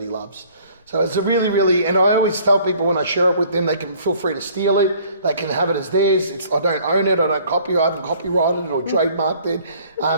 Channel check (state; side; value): inverted; both; correlation -0.55